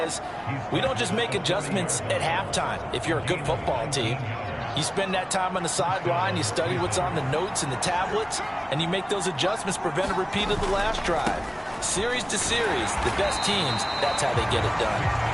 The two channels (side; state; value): both; identical; correlation 1.00